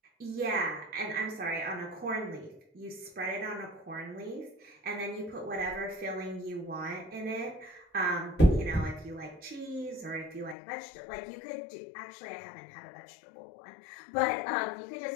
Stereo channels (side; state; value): right; drops out; at 10.6 s